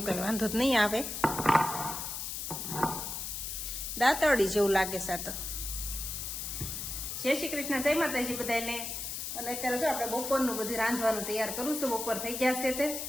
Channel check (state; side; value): noise; left; hiss, 5 dB below the sound